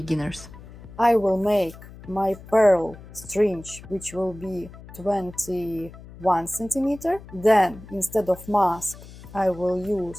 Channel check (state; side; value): noise; left; hum, 17 dB below the sound